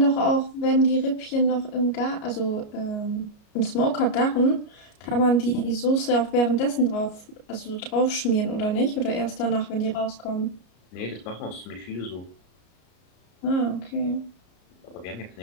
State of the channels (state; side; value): late; right; 33 ms